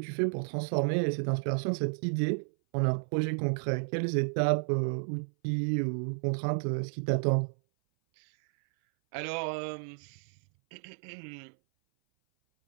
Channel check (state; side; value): silent; left; 57 dB below the other